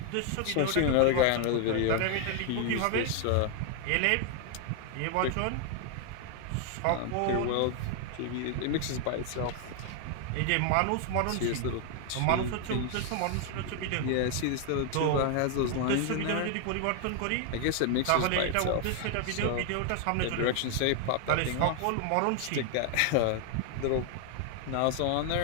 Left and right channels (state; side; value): different; both; correlation 0.00